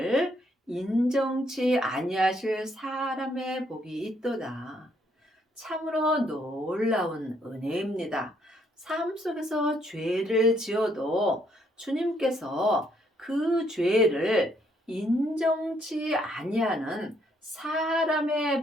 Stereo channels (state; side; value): normal; both; correlation 0.71